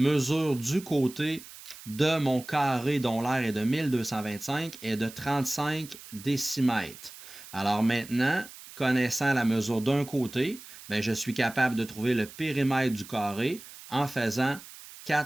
du côté de mon carré dont l'aire est de 1225 est de 35 décimètres. Alors maintenant, connaissant la mesure d'un côté, bien, je suis capable de trouver le périmètre du carré en faisant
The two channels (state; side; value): noise; right; hiss, 17 dB below the sound